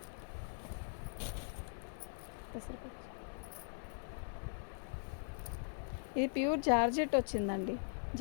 ఇది ప్యూర్ జార్జెట్ వచ్చిందండి.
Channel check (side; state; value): right; silent; 51 dB below the other